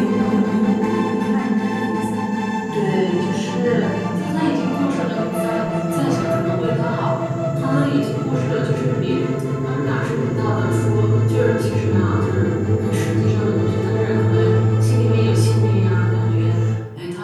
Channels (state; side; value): identical; both; correlation 1.00